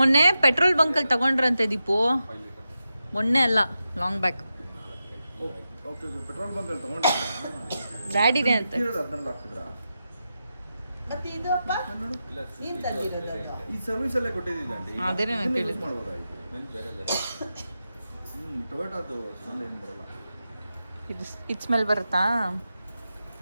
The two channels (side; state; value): both; inverted; correlation -0.90